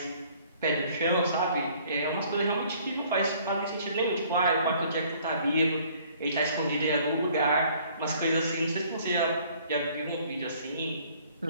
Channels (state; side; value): inverted; both; correlation -0.58